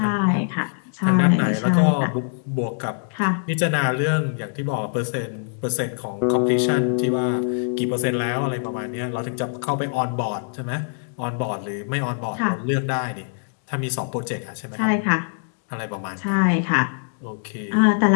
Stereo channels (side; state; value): right; silent; digital silence